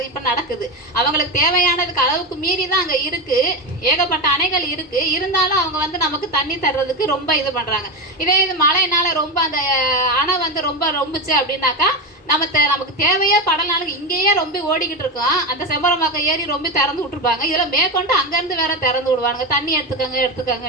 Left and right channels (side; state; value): both; normal; correlation 0.15